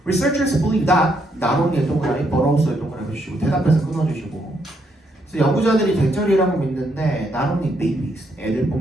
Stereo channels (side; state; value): both; normal; correlation 0.75